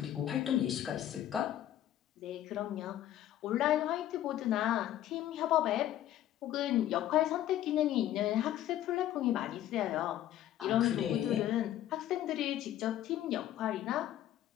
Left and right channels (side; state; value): right; quieter; 12.4 dB